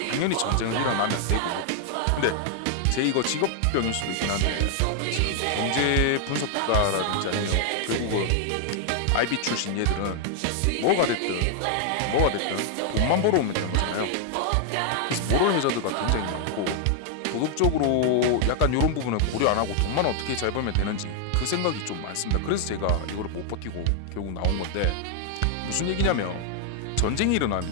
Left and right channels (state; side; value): different; both; correlation 0.00